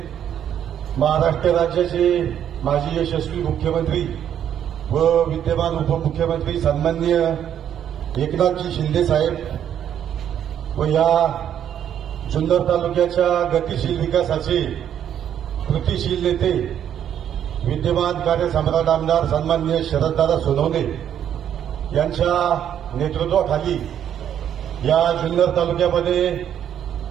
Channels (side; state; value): left; quieter; 9.7 dB